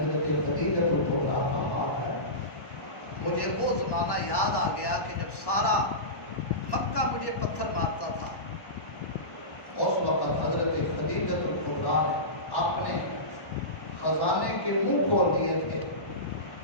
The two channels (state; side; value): late; right; 1.1 ms